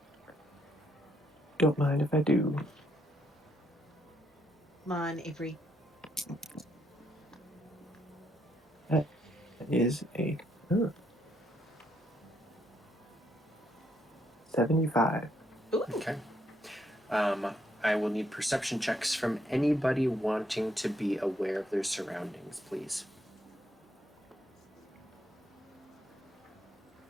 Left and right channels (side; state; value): both; normal; correlation 0.74